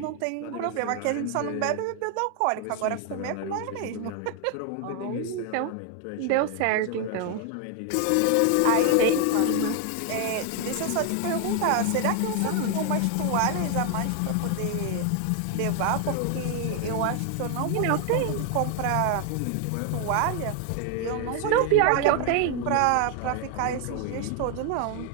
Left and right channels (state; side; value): different; both; correlation 0.00